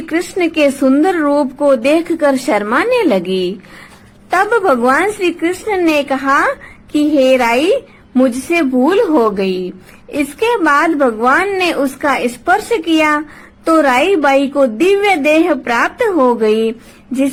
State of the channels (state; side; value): identical; both; correlation 1.00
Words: कृष्ण के सुंदर रूप को देखकर शर्माने लगी। तब भगवान श्री कृष्ण ने कहा कि हे राई, मुझसे भूल हो गई। इसके बाद भगवान ने उसका स्पर्श किया तो राई बाई को दिव्य देह प्राप्त हो गई,